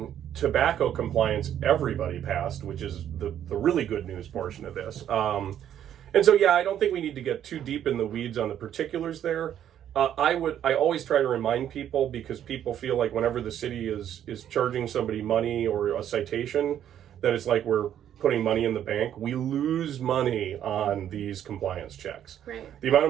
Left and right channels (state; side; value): quieter; left; 10.3 dB